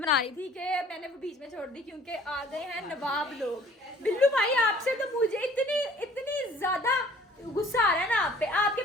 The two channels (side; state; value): both; normal; correlation 0.53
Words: रही थी कि मैंने वो बीच में छोड़ दी क्योंकि आ गए हैं नवाब लोग। बिल्लू भाई आपसे तो मुझे इतनी ज्यादा गुस्सा आ रहा है ना आप पे। आपके